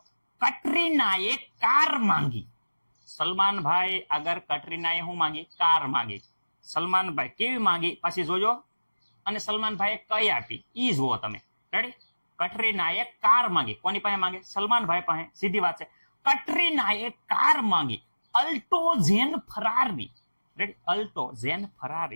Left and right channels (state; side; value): inverted; both; correlation -1.00